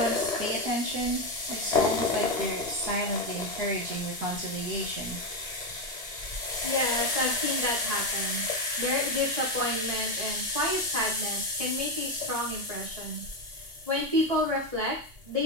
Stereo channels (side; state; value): left; late; 2.8 ms